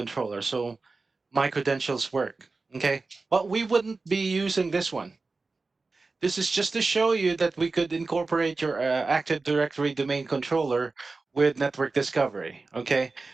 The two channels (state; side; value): quieter; left; 3.8 dB